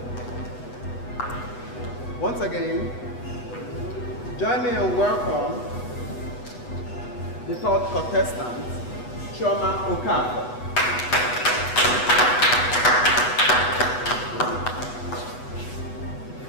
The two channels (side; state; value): right; late; 8.1 ms